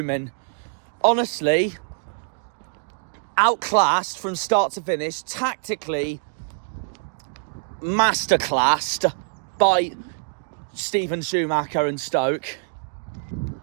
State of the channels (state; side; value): silent; left; digital silence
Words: Honestly, outclassed from start to finish, tactically masterclassed by Stephen Schumacher and Stoke